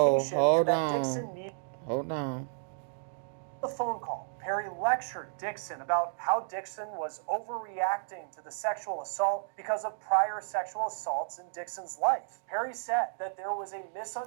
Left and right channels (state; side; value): silent; left; digital silence